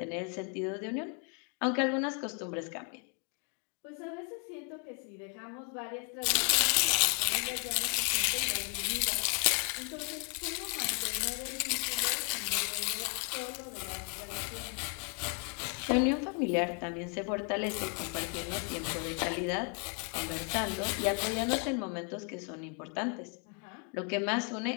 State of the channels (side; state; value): right; quieter; 35.3 dB